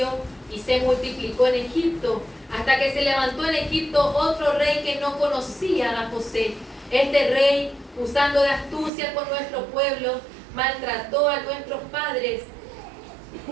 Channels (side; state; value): left; drops out; at 8.9 s